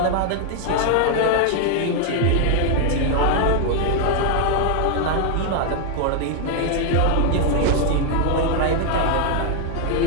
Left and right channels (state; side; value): different; both; correlation 0.00